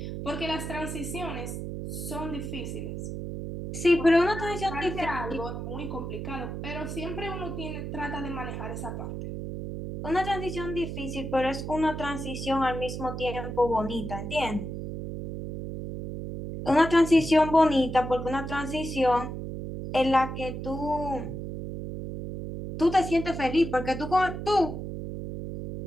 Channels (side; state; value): right; noise; hum, 6 dB below the sound